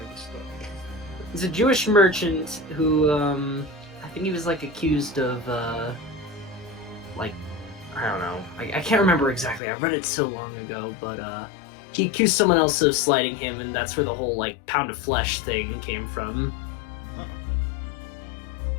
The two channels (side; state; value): right; drops out; at 9.6 s